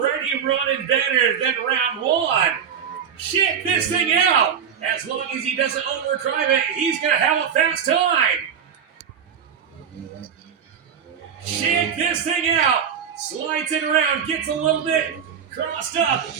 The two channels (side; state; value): left; quieter; 7.8 dB